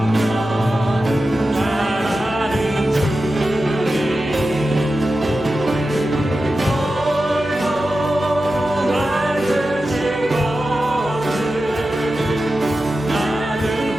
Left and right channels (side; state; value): right; noise; hum, 19 dB below the sound